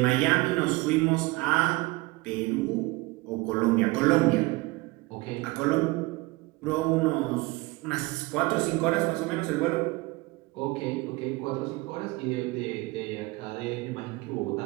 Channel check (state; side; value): quieter; left; 22.7 dB